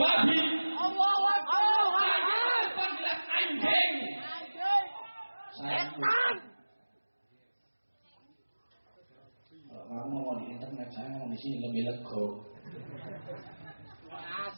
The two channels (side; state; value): both; inverted; correlation -1.00